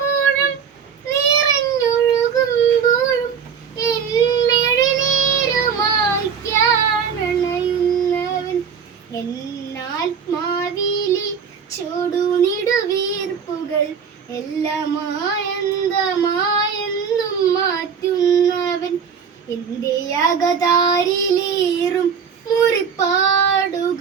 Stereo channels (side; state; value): left; quieter; 6.9 dB